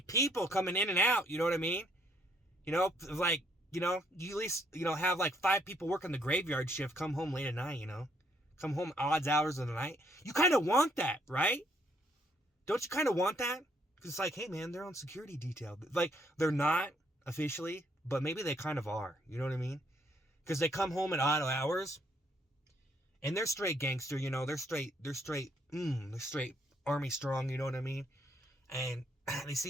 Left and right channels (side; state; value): both; normal; correlation 0.69